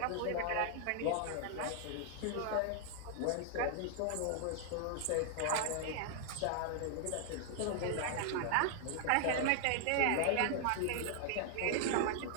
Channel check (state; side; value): different; both; correlation 0.00